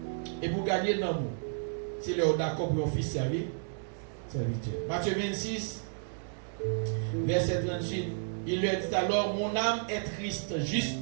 Et pour gagner l'amour, c'est le d'accord pour un fils servir. Matthieu 26, verset 38. Il lui a dit alors, mon âme est triste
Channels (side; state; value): left; silent; digital silence